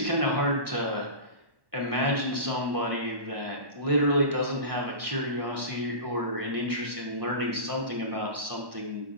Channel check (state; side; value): late; left; 1.1 ms